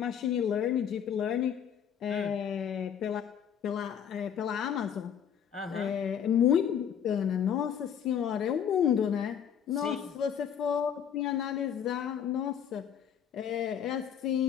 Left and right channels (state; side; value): quieter; right; 8.5 dB